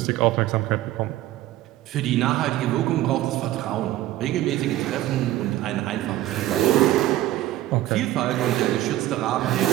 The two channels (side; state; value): left; quieter; 14.9 dB